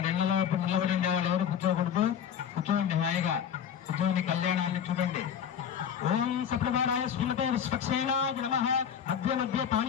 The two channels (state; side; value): quieter; right; 8.4 dB